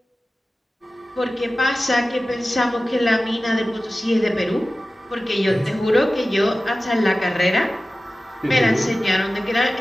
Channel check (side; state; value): both; normal; correlation 0.96